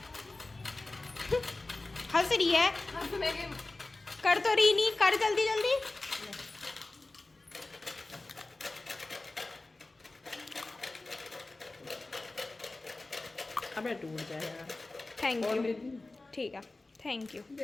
हंस रही है, हंसने के कर तो रही नहीं, कर जल्दी जल्दी। अबे टूट जाएगा। Thank you. ठीक है, थैंक यू।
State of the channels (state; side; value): quieter; right; 3.1 dB